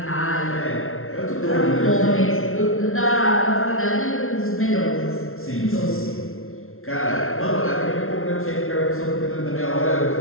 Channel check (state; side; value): late; right; 0.62 ms